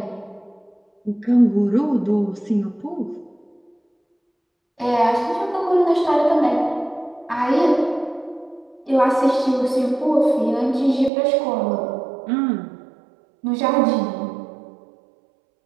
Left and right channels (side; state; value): left; drops out; at 11.1 s